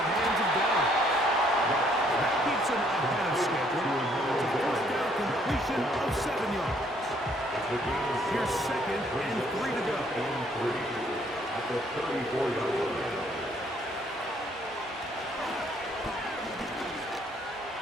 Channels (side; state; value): both; normal; correlation 0.65